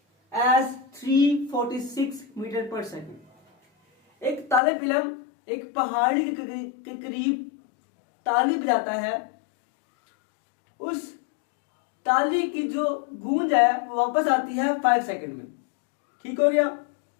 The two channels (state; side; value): drops out; right; at 4.6 s